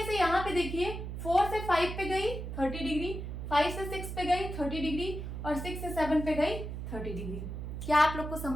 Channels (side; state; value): right; noise; hum, 6 dB below the sound